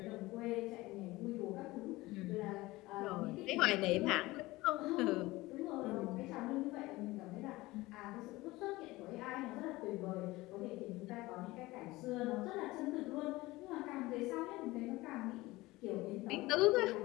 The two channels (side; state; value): right; quieter; 19.8 dB